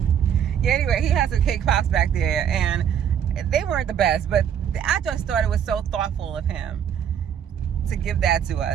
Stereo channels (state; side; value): quieter; left; 8.8 dB